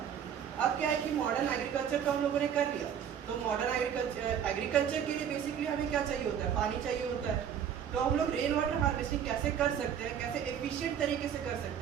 अब क्या है कि मॉडर्न एग्रीकल्चर तो हम लोगों ने कर लिया, तो मॉडर्न एग्रीकल्चर के लिए बेसिकली हमें क्या चाहिए होता है? पानी चाहिए होता है। तो हम लोग रेन वाटर हार्वेस्टिंग कैसे कर सकते हैं, कैसे एफिशिएंट तरीके से कर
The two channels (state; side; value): quieter; left; 8.6 dB